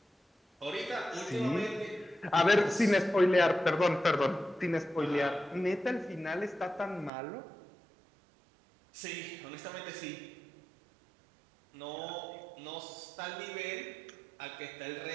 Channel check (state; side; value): drops out; left; at 7.1 s